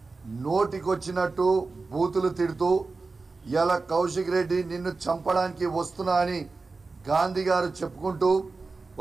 నోటికొచ్చినట్టు బూతులు తిడుతూ ఇలా కౌశిక్ రెడ్డి నిన్ను చంపడానికి వస్తున్నా అని గాంధీ గారు చెప్పుకుంటూ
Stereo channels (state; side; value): quieter; left; 3.9 dB